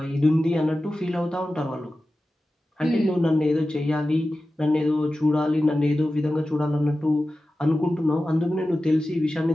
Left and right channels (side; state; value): both; normal; correlation 0.94